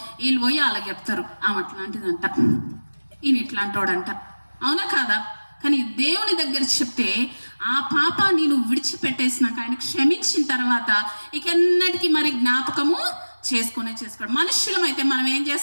వీళ్ళు పోయి వాళ్ళకి చెప్తారు, ఆమె అట్లాంటిదంట, ఈయన ఇట్లాంటోడంట. అవునా కాదా? కానీ దేవుని దగ్గర చెప్తే ఆ పాపాన్ని నువ్వు విడిచిపెట్టేసినాక ఆయన క్షమించిన తర్వాత ఇక ఎన్నటికీ మరి జ్ఞాపకము చేసుకోడు. మనుషులమైతే మనం ఏం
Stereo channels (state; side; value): inverted; both; correlation -1.00